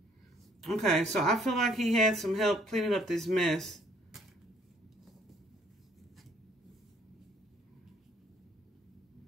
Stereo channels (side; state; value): both; normal; correlation 0.62